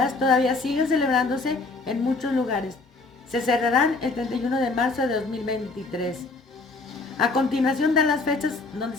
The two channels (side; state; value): right; quieter; 3.6 dB